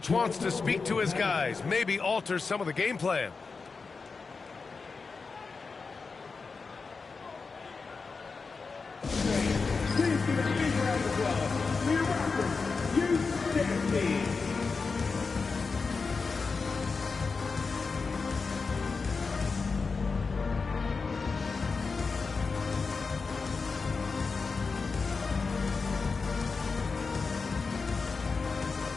wants to speak to his guys, maybe alter some of the game plan. Please give a big round of applause for your Raptors. You stand team.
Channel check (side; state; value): right; quieter; 4.6 dB